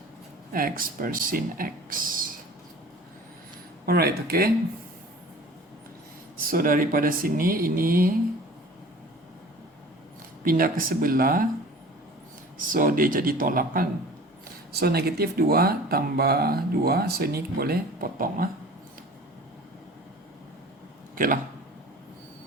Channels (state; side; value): normal; both; correlation 0.44